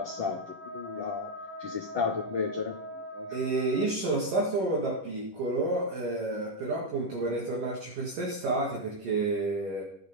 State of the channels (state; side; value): late; left; 10 ms